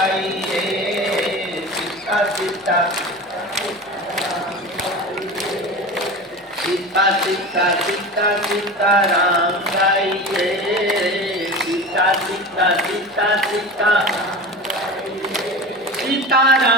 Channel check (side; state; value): both; normal; correlation 0.31